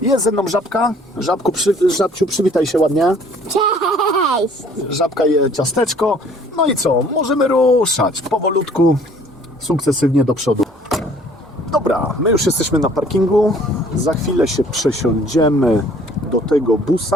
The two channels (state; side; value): normal; both; correlation 0.56